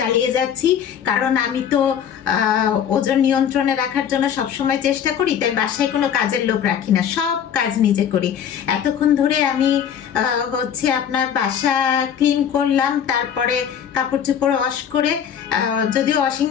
যাচ্ছি, কারণ আমি তো ওজন নিয়ন্ত্রণে রাখার জন্য সবসময় চেষ্টা করি, তাই বাসায় কোনো কাজের লোক রাখি না, সব কাজ নিজে করি। এতক্ষণ ধরে আমি হচ্ছে আপনার বাসা ক্লিন করলাম, তারপরে কাপড় চোপড় ওয়াশ করে, যদিও ওয়াশিং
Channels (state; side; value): quieter; right; 8.6 dB